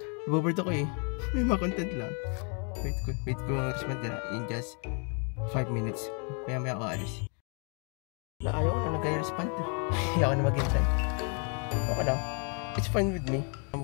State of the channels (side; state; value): right; quieter; 38.4 dB